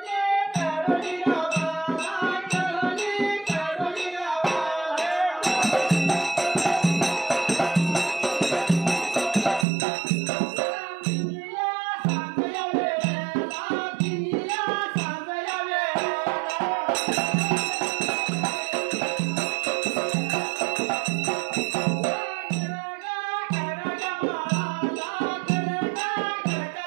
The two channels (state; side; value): drops out; left; at 9.7 s